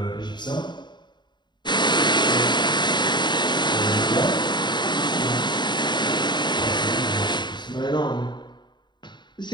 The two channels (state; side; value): late; right; 0.22 ms